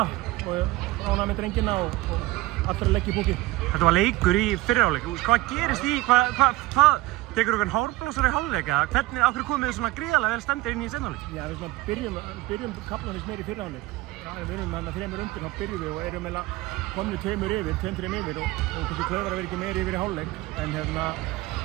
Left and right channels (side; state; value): left; quieter; 18.8 dB